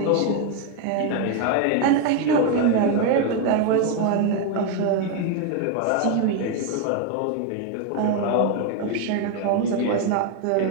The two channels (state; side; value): different; both; correlation 0.01